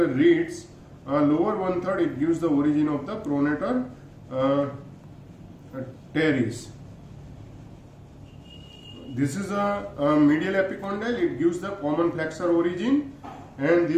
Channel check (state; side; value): identical; both; correlation 1.00